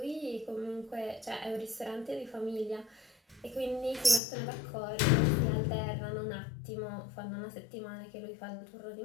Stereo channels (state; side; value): drops out; right; at 4.2 s